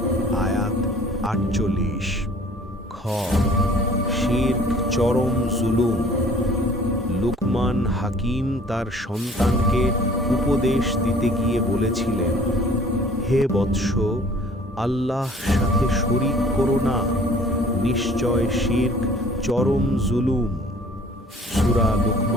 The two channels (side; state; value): both; normal; correlation 0.52